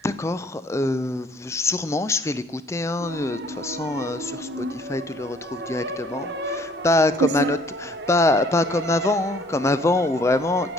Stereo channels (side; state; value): both; normal; correlation 0.58